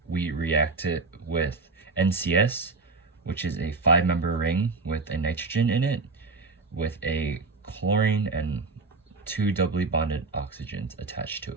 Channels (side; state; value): left; quieter; 3.9 dB